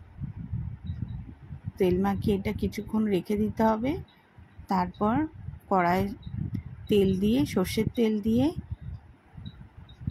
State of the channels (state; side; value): identical; both; correlation 1.00